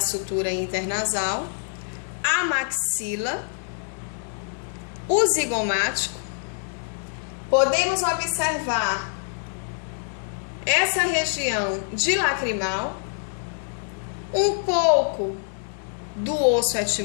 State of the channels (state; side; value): silent; right; digital silence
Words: sutura internasal, a maxila, o zigomático. Podemos observar essa região de lacrimal, um pouco do osso